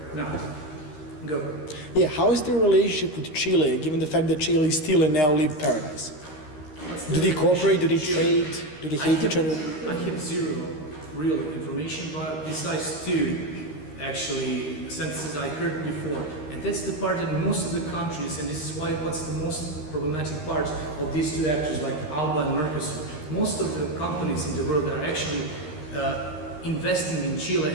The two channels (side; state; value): right; late; 13 ms